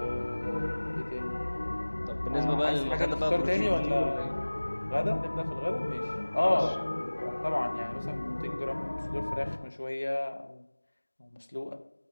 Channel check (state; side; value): inverted; both; correlation -1.00